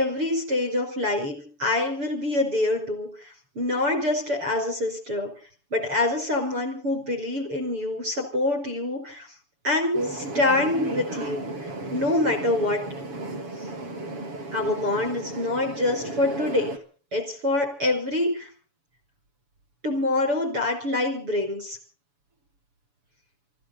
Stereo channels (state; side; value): late; left; 7.0 ms